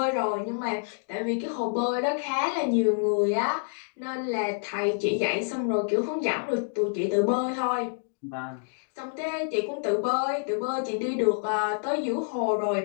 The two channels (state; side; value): silent; right; digital silence